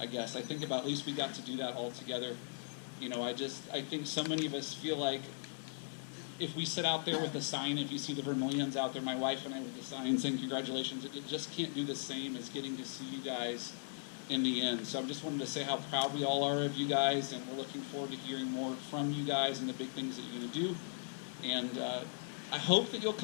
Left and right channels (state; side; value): silent; right; 52 dB below the other